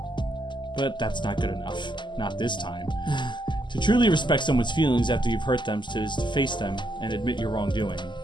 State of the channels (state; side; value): late; right; 0.22 ms